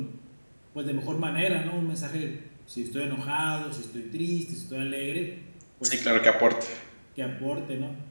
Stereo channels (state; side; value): inverted; both; correlation -1.00